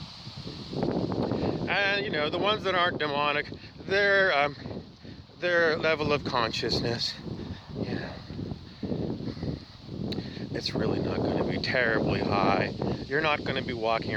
And, you know, the ones that aren't demonic, their level of consciousness, you know, it's really not going to be terribly high. You're not going to be walking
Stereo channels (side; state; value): both; identical; correlation 1.00